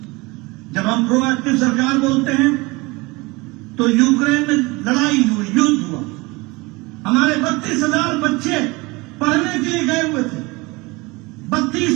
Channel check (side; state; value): left; quieter; 24.1 dB